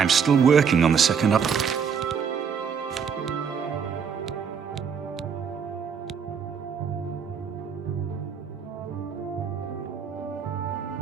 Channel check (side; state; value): left; quieter; 6.8 dB